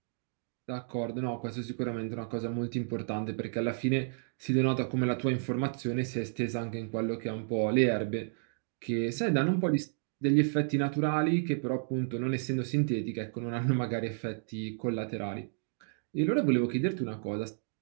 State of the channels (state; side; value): silent; left; digital silence